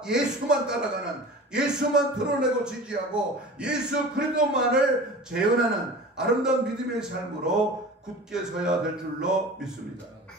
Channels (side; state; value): both; normal; correlation 0.38